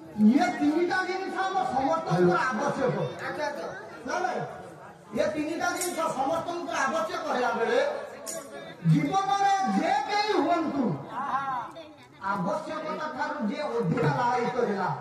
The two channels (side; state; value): both; identical; correlation 1.00